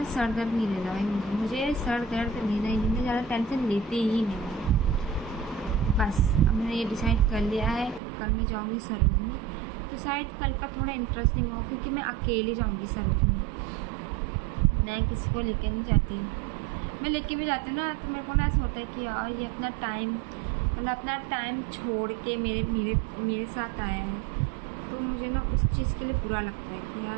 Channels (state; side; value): drops out; left; at 8.0 s